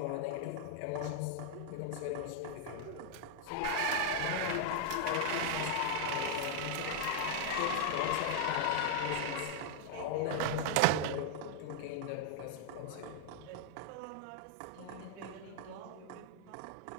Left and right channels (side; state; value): both; different; correlation 0.00